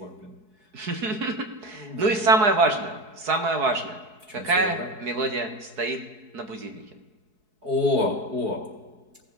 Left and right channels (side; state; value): left; late; 4.7 ms